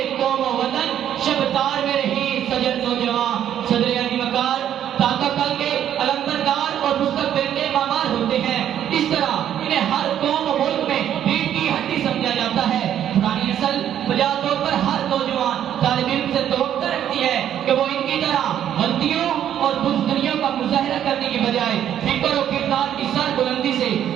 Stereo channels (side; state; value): left; quieter; 10.3 dB